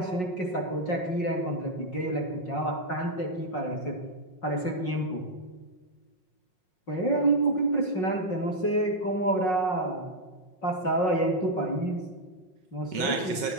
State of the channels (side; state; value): right; late; 5.5 ms